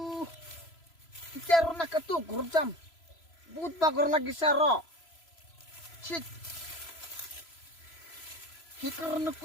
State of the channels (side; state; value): right; late; 3.0 ms